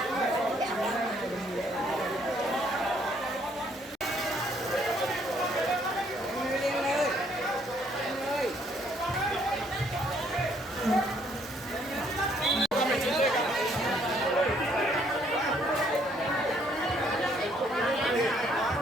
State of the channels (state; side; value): normal; both; correlation 0.66